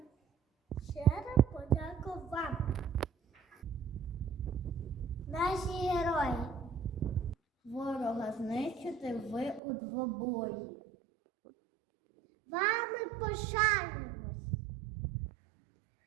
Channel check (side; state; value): left; drops out; at 9.6 s